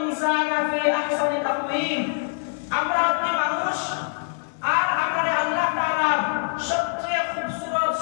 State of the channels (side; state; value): right; silent; digital silence